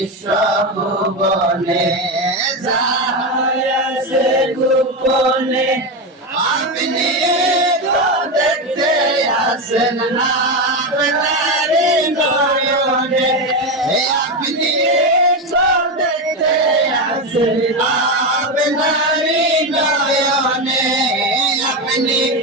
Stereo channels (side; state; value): both; normal; correlation 0.14